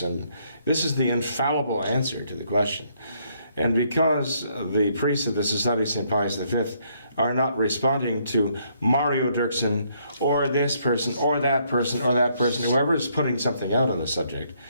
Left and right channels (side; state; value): both; inverted; correlation -0.70